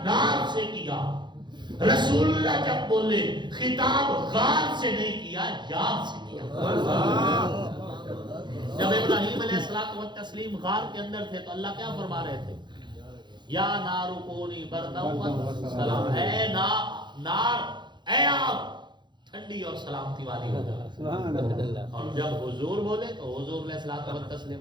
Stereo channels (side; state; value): left; late; 0.22 ms